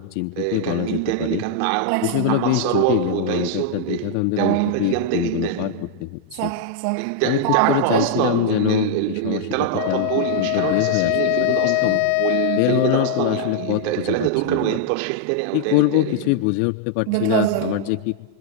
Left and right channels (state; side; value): different; both; correlation -0.01